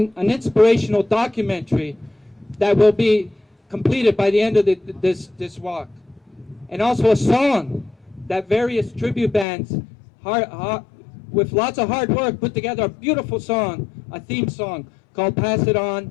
an inspirational documentary that will be completed by the end of this walk. And also a song that various tribute bands, with lots of hard work, put together a beautiful song, a theme song called Pass It On,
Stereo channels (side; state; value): right; drops out; at 9.5 s